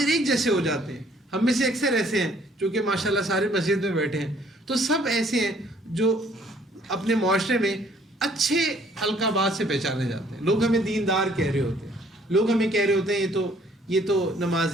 ایک جیسے ہو جاتے ہیں. ہم میں سے اکثر ایسے ہیں جو کہ ماشاءاللہ سارے مسجد میں بیٹھے ہیں, تو سب ایسے ہیں جو اپنے معاشرے میں اچھے القابات سے پہچانے جاتے ہیں. لوگ ہمیں دیندار کہہ رہے ہوتے ہیں, لوگ ہمیں کہہ رہے ہوتے ہیں یہ تو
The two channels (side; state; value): both; normal; correlation 0.61